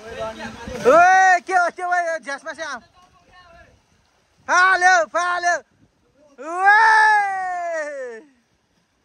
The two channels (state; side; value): identical; both; correlation 1.00